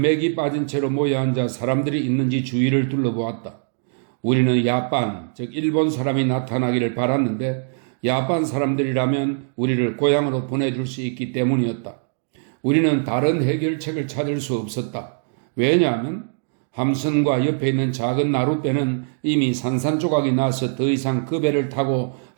맥이 빠진 채로 모여 앉아 사람들이 있는지 주위를 둘러보았다. 우리는 야반, 즉 일본 사람이 나타나기를 바랐는데 야반 사람들이라면 우리를 고향으로 보내줄 수 있기 때문이었다. 우리는 다른 해결책을 찾을 수 없었다. 왜냐하면 함선과 옆에 있는 작은 나룻배는 이미 산산조각이 나서 더 이상 그 배를 타고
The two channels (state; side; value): silent; left; digital silence